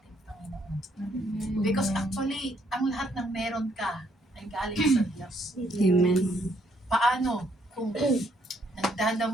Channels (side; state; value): both; normal; correlation 0.70